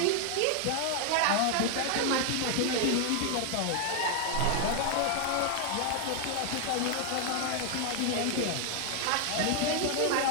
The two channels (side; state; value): both; different; correlation 0.00